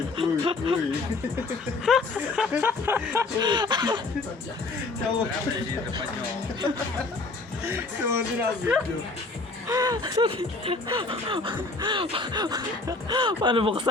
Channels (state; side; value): quieter; right; 3.5 dB